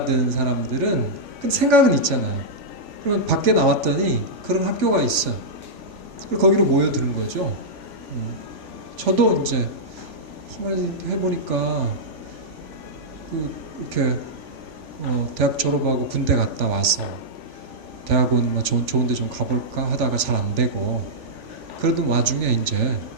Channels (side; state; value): left; late; 3.5 ms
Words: 사람들은 그 생각은 있잖아요. 그러면 밖에 나왔더니 그런 학교가 있어. 그리고 거기로 모여드는 거죠. 저도 이제 한마디 해보니까 이렇게 대학 졸업하고 군대 갔다 와서 대학원 뭐 좋은데 좀 가볼까 하다가 잘 안 되고 그러던 와중에 이제